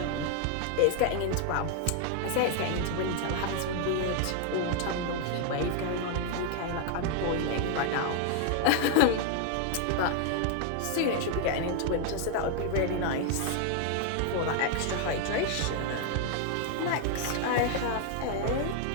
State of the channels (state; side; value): different; both; correlation 0.00